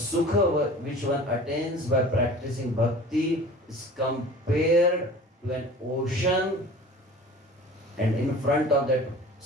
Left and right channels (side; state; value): both; normal; correlation 0.42